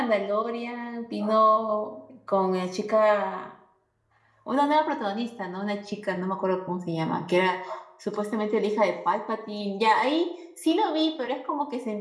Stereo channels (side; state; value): both; identical; correlation 1.00